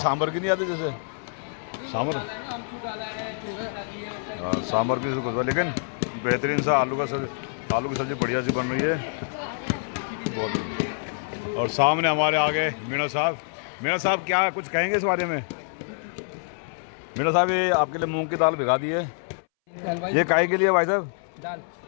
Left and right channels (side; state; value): right; silent; 61 dB below the other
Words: सांभर की नहीं आती, जैसे सांभर। हाँ, सांभर की खुशबू, लेकिन बेहतरीन सा आलू की सब्जी बढ़िया सी बन रही है बहुत। और सामने हमारे आगे मीणा साहब। मीणा साहब क्या कुछ कहेंगे इस बारे में? मीणा साहब, ये आपके लिए मूंग की दाल भिगा दी है, ये काहे के लिए भाई साहब? दाल